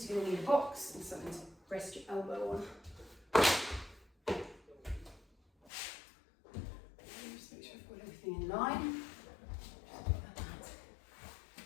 you're going to need a box and something to rest your elbow on. Just make sure I've got everything in line.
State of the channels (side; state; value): right; drops out; at 5.7 s